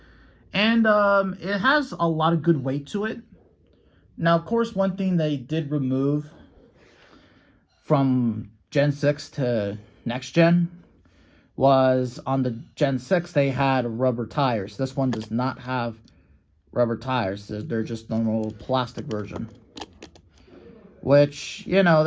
And it has a lot of good weight to it. Now, of course, one thing they did remove from Gen 6 to next gen was on the Gen 6, they had rubber tires. This one does not have rubber tires. They're just normal plastic version. Which, you know,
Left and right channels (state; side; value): identical; both; correlation 1.00